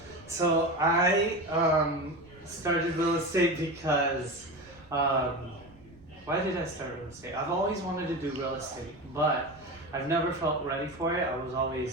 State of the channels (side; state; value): right; noise; rumble, 25 dB below the sound